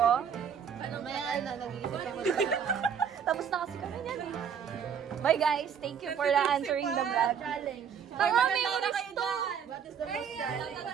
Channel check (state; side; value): quieter; left; 7.6 dB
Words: Maya na, nag-iisip ako. Tapos na kasi kami yan eh. Bye guys, thank you for answering the vlog. Challenge. Tanga, may oras to! What is the most challenge?